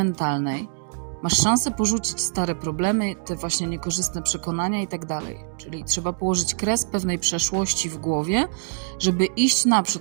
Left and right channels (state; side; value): silent; left; 61 dB below the other